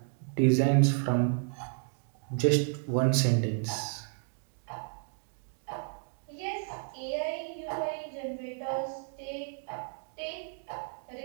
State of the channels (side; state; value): left; silent; 56 dB below the other